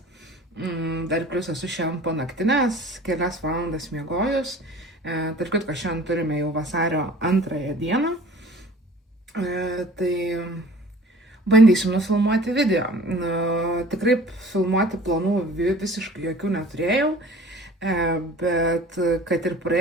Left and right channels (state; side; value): normal; both; correlation 0.46